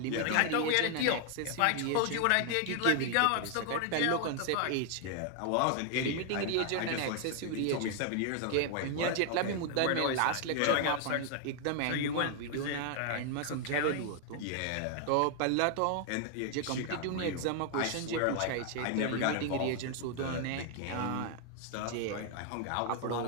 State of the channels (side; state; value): both; different; correlation 0.00